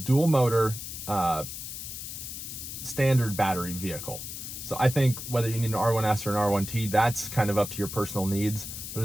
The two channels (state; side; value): noise; left; hiss, 8 dB below the sound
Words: motor standard battery vehicle. So I think whether you need an R1S or an R1T, that's kind of up to your personal needs. But